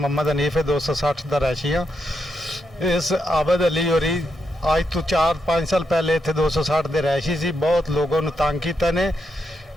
हनीफ है, 260 दा रहायशी हाँ। इस आबिद अली होरी आज तो 4-5 साल पहले इतने 260 के रहायशी सी। बहुत लोगों ने तंग किया ने।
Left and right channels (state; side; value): normal; both; correlation 0.82